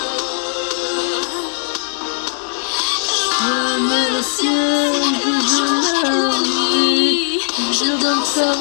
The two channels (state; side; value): silent; right; digital silence